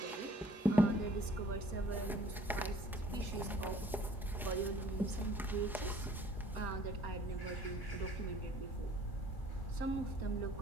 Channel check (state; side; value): normal; both; correlation 0.55